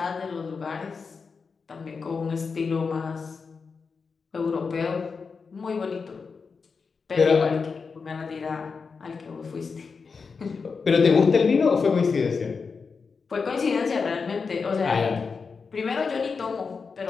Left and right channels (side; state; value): right; quieter; 5.1 dB